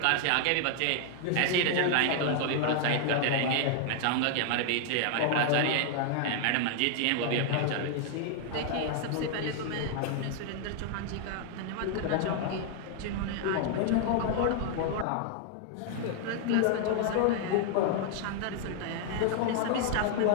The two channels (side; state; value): both; different; correlation 0.00